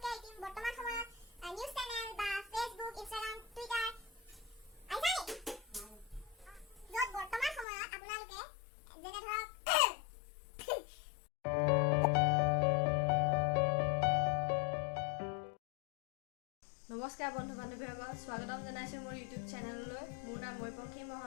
বৰ্তমান সময়ত নিউজ চেনেল বা ফেচবুক ইনষ্টাগ্ৰাম টুইটাৰ য'ত বৰ্তমান সময়ত আপোনালোকে যেনে ধৰক নমস্কাৰ বন্ধু বান্ধৱীসকল স্বাগতম জনাইছোঁ মোৰ ইউটিউব চেনেললৈ মোৰ নাম পাংখি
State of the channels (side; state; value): right; drops out; at 7.7 s